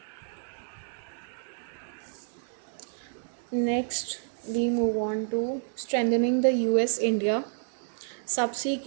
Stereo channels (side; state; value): left; silent; 58 dB below the other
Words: Next we move on to strengthening the US India subsea